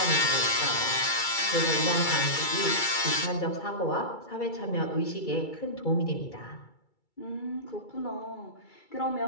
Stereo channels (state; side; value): late; right; 2.3 ms